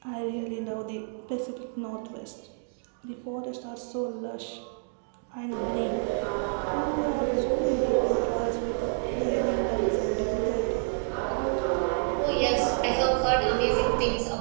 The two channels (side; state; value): left; silent; 59 dB below the other